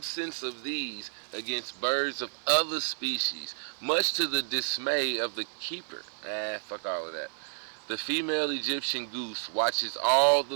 of these, against birds of other species, much to the dismay of the keeper. Fuck all of that. The female Egyptian goose watches all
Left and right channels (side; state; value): left; silent; digital silence